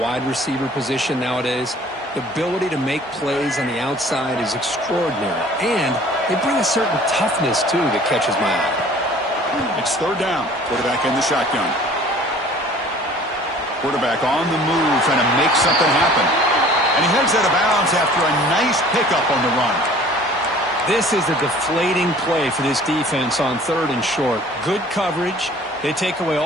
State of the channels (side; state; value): both; normal; correlation 0.50